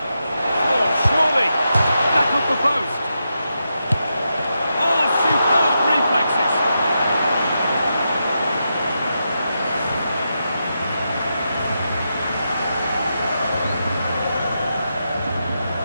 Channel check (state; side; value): inverted; both; correlation -0.86